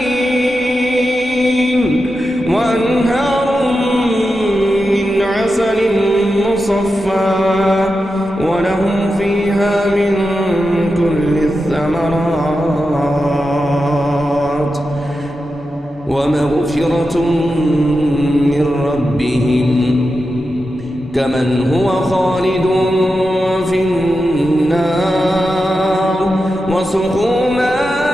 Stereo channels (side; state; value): both; normal; correlation 0.90